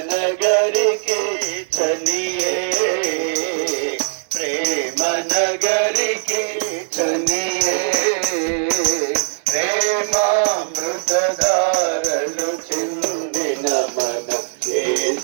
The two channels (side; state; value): left; silent; 66 dB below the other